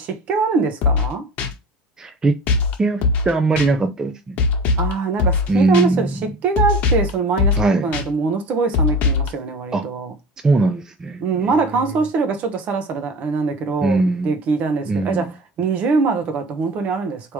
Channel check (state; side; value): normal; both; correlation 0.37